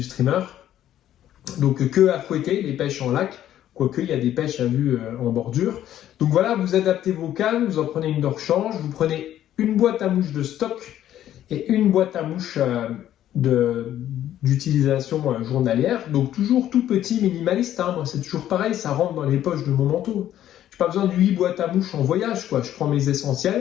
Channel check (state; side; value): quieter; right; 11.8 dB